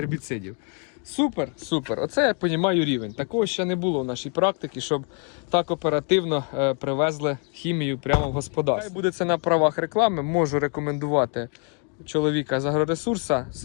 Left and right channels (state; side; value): quieter; right; 39.8 dB